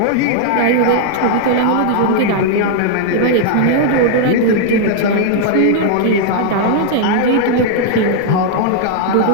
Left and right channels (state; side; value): different; both; correlation -0.01